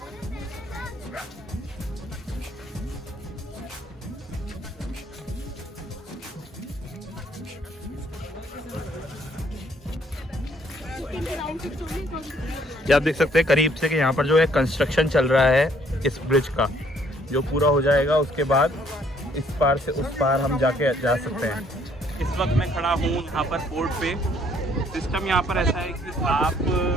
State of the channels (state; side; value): normal; both; correlation 0.64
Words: ये आप देख सकते हैं करीब से कि यहाँ पर जो है कंस्ट्रक्शन चल रहा है इस ब्रिज का, जो पूरा हो जाएगा उसके बाद इस पार से उस पार हम जाके जा सकते हैं। इस वक्त मैं खड़ा हूँ यहाँ पर पोर्ट पे। सिस्टम यहाँ पर ऐसा है कि आप